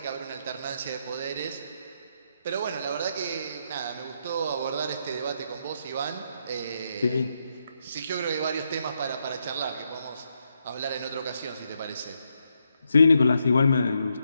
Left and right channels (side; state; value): both; inverted; correlation -0.80